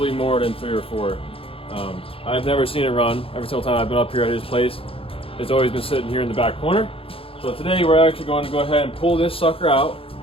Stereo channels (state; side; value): late; right; 0.27 ms